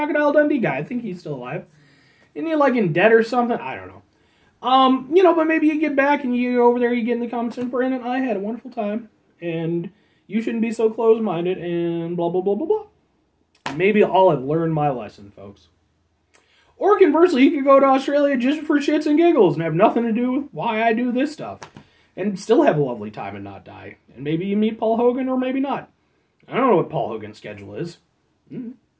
Dundee guy. I think he's still alive. Isn't he, like, in debt or something? I don't know. But maybe you get back and you go over there, you get in the comments and Brandon, I had a wonderful time. And you shouldn't be so close-minded, and blah, blah, blah, blah, blah. Maybe I'll have learned my lesson, folks. Or conversely, you could go to Australia just for shits and giggles and have nothing to do with why I do this stuff. And still have a lovely time and not die. And maybe you meet Paul Hogan, or maybe not. I don't know what Paul Hogan's schedule is.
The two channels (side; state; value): both; identical; correlation 1.00